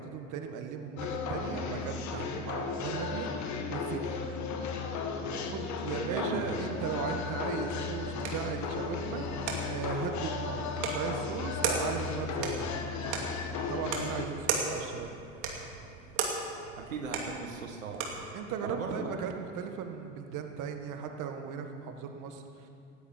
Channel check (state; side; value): normal; both; correlation 0.13